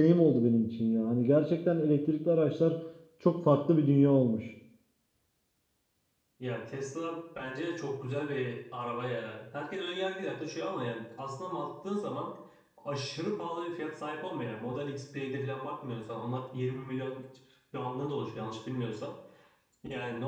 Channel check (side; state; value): both; identical; correlation 1.00